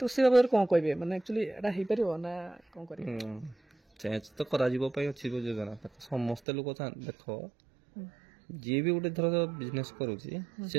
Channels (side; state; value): left; drops out; at 6.4 s